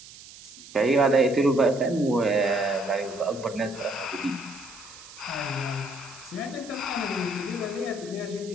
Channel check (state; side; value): noise; right; hiss, 18 dB below the sound